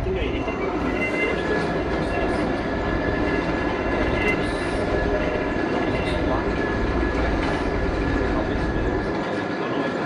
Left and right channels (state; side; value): identical; both; correlation 1.00